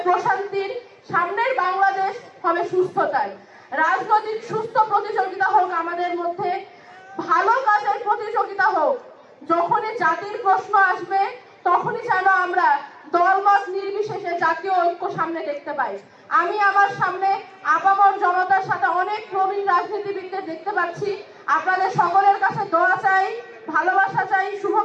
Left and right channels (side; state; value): both; identical; correlation 1.00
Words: প্রশান্তির, সামনের বাংলাদেশ হবে সুস্থতার। রাজনৈতিক সুস্থ প্রতিযোগিতা হোক আমাদের মধ্যে, ভালো কাজের প্রতিযোগিতা হোক। যখনই জাতির প্রশ্ন আসবে তখনই যেন আমরা দলমত নির্বিশেষে জাতীয় ঐক্য সামনে দেখতে পাই। আমি আমার সামনে আপামর জনতার সাথে অনেক প্রবীণ রাজনীতিবিদদের দেখতে পাচ্ছি। আপনাদের সকলের কাছে দোয়া চাই, ভালোবাসা চাই,